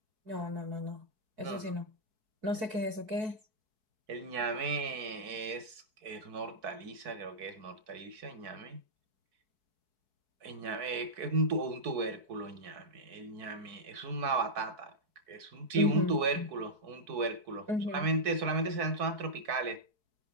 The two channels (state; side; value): late; left; 4.6 ms